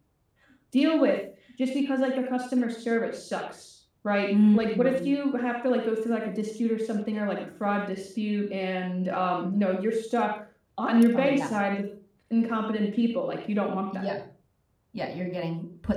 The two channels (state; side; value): identical; both; correlation 1.00